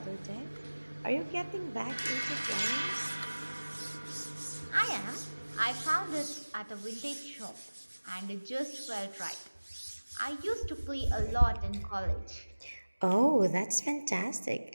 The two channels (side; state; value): both; inverted; correlation -1.00